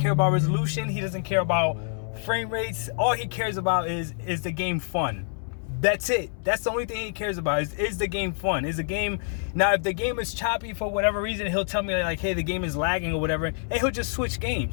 about resolution. He doesn't care about frame rates. All he cares about is the game fun. That's it. That's the only thing he cares about is the game fun. Is the game. Now, if the game is choppy for whatever reason, he'll tell me like, hey, the game is lagging or whatever, and he'll just switch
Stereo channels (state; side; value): silent; right; 61 dB below the other